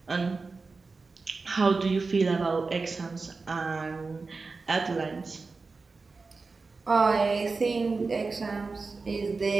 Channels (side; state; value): left; quieter; 4.1 dB